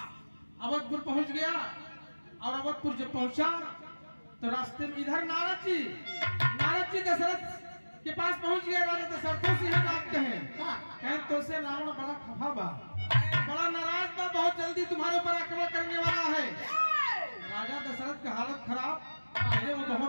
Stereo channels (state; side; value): inverted; both; correlation -1.00